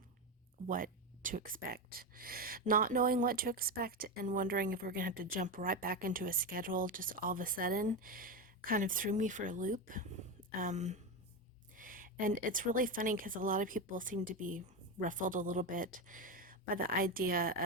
what to expect. Not knowing what to expect and wondering if we're going to have to jump right back into a schedule just all of a sudden kind of threw me for a loop. And it's really funny because a lot of people seem to be ruffled a little bit by the idea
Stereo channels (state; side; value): normal; both; correlation 0.14